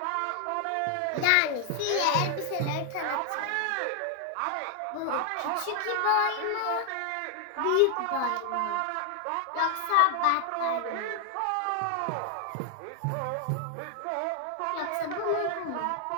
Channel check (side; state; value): both; different; correlation 0.00